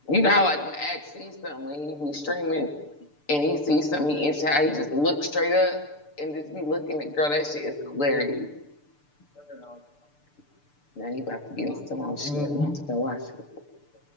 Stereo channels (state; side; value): late; right; 6.8 ms